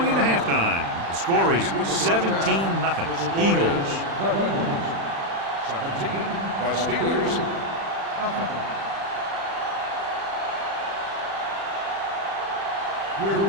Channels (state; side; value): late; left; 36 ms